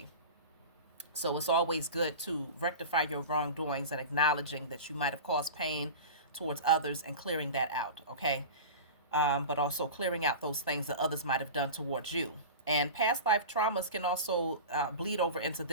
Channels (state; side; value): inverted; both; correlation -0.31